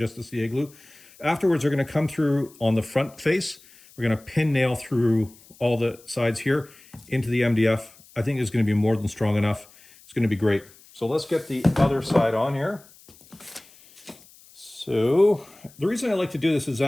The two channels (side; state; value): left; noise; hiss, 25 dB below the sound